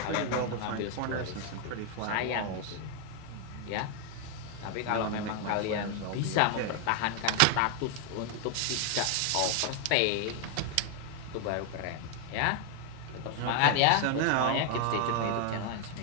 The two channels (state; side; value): different; both; correlation 0.00